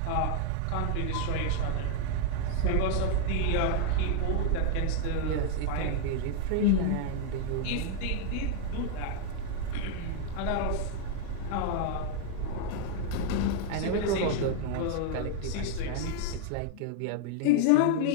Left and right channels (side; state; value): both; different; correlation 0.00